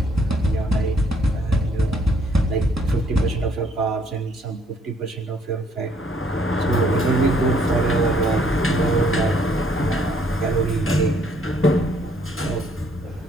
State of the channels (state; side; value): normal; both; correlation 0.65